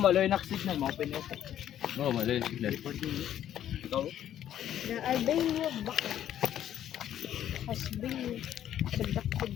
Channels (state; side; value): quieter; right; 11.0 dB